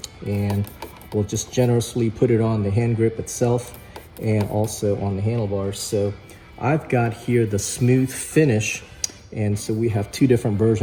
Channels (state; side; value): identical; both; correlation 1.00